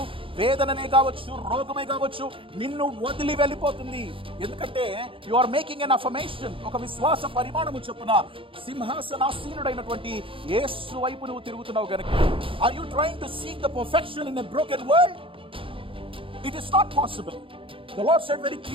వేదననే కావచ్చు, రోగమే కావచ్చు, నిన్ను వదిలి వెళ్ళిపోతుంది. ఎందుకంటే you are making an affirmation. ఒక విశ్వాస పరిమాణము చొప్పున సింహాసనాసీనుడైనటువంటి యేసు వైపు నువ్వు తిరుగుతున్నావు గనుక. Are you trying to seek the perfection in a broken world? It is not possible. The Lord said very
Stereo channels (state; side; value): late; left; 0.26 ms